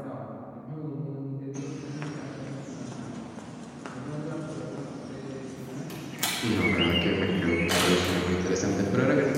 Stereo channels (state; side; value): identical; both; correlation 1.00